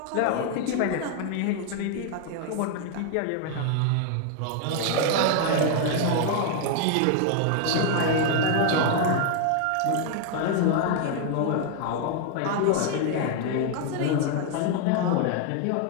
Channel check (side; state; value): both; different; correlation 0.00